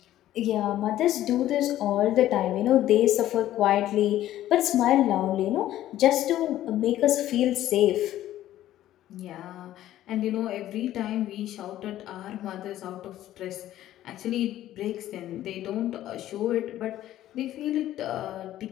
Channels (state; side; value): quieter; right; 13.3 dB